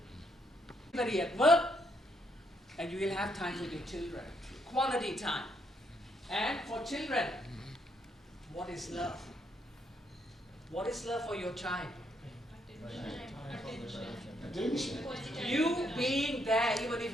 Everybody at work, and you will have time with your children. Quality time. And for children, what is love? What is love for your child? You being there, even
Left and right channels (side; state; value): both; normal; correlation 0.75